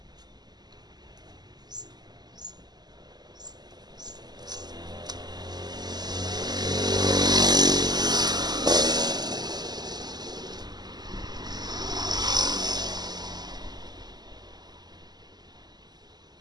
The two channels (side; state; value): left; late; 0.20 ms